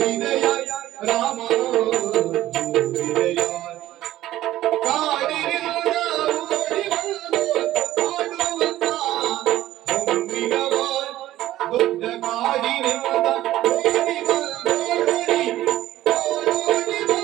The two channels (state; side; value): quieter; left; 14.5 dB